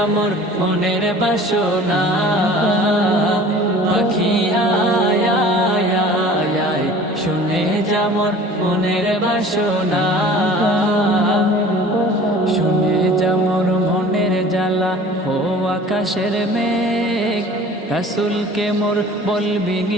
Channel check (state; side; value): normal; both; correlation 0.45